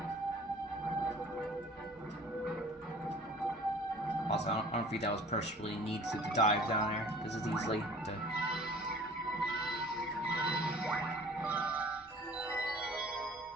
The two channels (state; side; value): normal; both; correlation 0.47